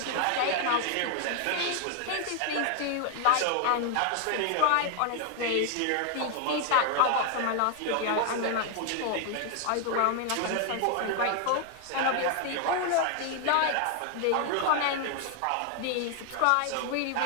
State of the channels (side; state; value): both; different; correlation 0.00